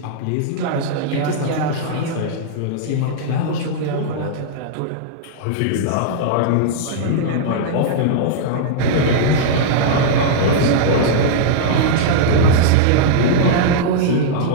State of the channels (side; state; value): both; different; correlation -0.02